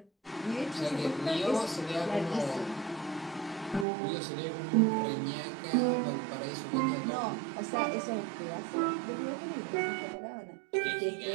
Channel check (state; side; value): drops out; left; at 3.9 s